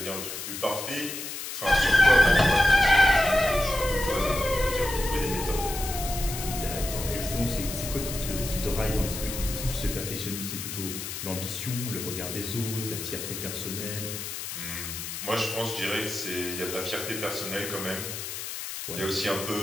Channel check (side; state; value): left; noise; hiss, 7 dB below the sound